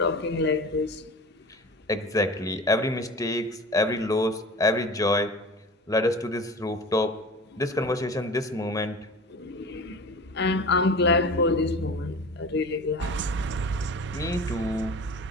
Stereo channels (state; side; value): normal; both; correlation 0.36